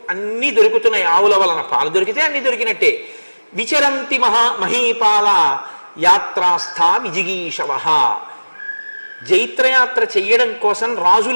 అన్నీ దొరుకుతున్నాయి. ఆవుల వలన పాలు దొరికితే అన్ని దొరికినట్టే. విచరంతి మహీపాల యాత్రాస్థా విజిగీషవ, జైత్రయాత్ర చెయ్యడం కోసం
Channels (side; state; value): both; inverted; correlation -1.00